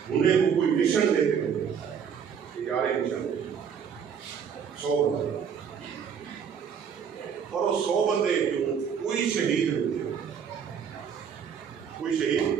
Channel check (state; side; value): quieter; left; 7.3 dB